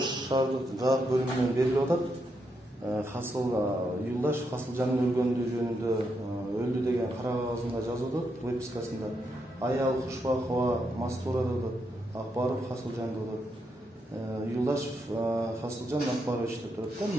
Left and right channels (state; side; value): normal; both; correlation 0.81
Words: şahardык жак бөлүмүнөн берилип атат. Hasıl Yıldaş Hasılcan'ın ölgöndüğü жөнүндө öldü деген кара кагазында жазып атат, выпискасында. Аял Кушбакова Мастура деп Акбаров Hasılcan деп. Yıldaş Hasılcan Акбарович деп турат да